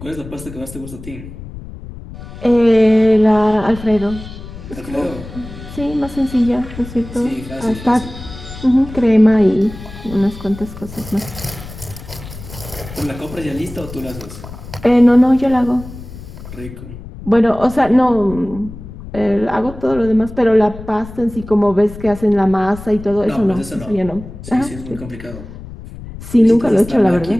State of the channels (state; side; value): noise; left; rumble, 14 dB below the sound